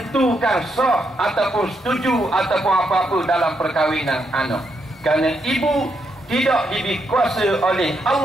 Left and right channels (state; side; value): normal; both; correlation 0.79